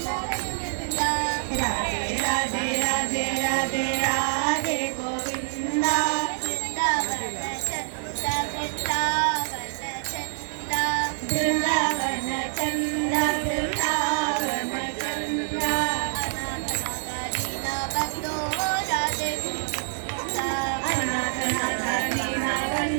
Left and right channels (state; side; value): silent; left; digital silence